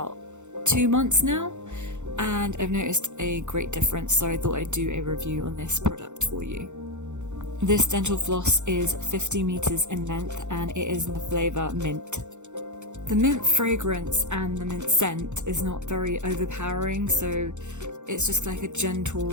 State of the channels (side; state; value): left; late; 0.84 ms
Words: 2 months now, and I've noticed a great difference, so I thought I'd do a review on this product for you. This dental floss is 50 meters in length and it is in the flavour mint. The mint fragrance and the mint scent is not very overpowering, so it's just like a gentle,